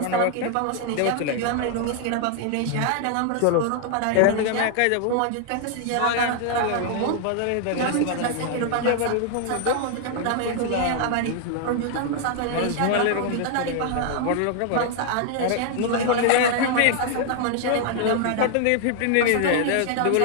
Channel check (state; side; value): different; both; correlation 0.00